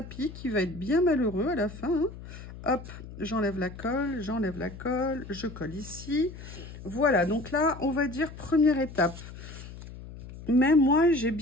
qui va être bien malheureux à la fin, hein. Hop, j'enlève la colle, je colle ici. Voilà, donc là, on va dire première étape. Mais moi, j'ai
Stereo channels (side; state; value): left; noise; hum, 14 dB below the sound